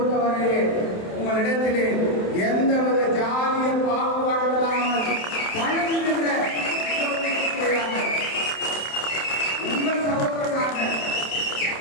உங்களிடத்திலே எந்தவித ஜாதிய பாகுபாடு இல்லாமல் பழகுகின்ற உங்கள் சகோதரனாக,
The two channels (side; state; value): right; late; 27 ms